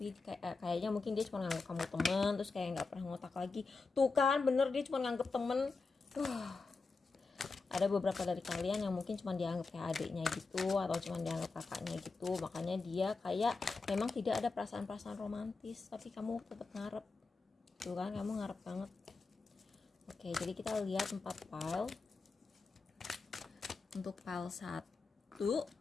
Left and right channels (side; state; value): right; quieter; 4.1 dB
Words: kayaknya mungkin dia cuma nganggap kamu temen, terus kayak nggak pernah ngotak lagi. Tuh kan, bener, dia cuma nganggap temen. Ada beberapa dari kalian yang mungkin cuma dianggap kayak adiknya gitu, atau cuma dianggap kakaknya gitu, makanya dia kayak memang tidak ada perasaan-perasaan romantis, tapi kamu tetap ngarep. Tuh kan, kamu ngarep banget. Oke, jadi kita lihat 4 file. Untuk file 1